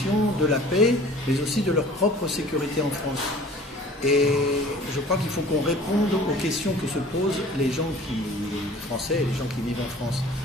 de la paix, mais aussi de leur propre sécurité en France. Et je crois qu'il faut qu'on réponde aux questions que se posent les gens français et les gens qui vivent en France.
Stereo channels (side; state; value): both; normal; correlation 0.47